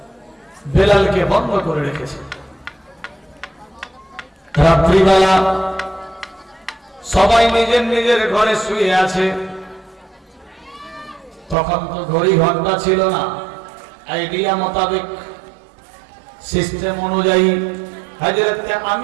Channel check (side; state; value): left; drops out; at 11.6 s